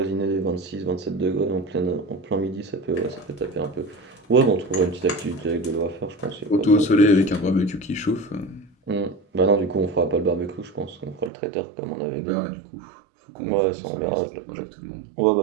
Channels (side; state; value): left; drops out; at 11.3 s